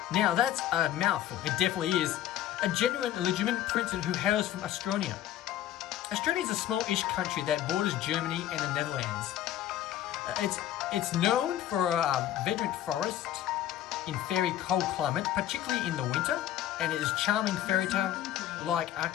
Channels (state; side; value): quieter; right; 12.2 dB